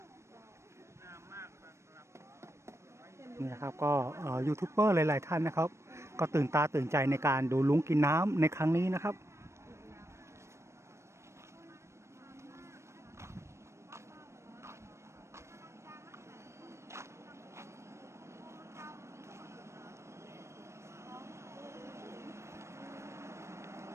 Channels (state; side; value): late; left; 0.13 ms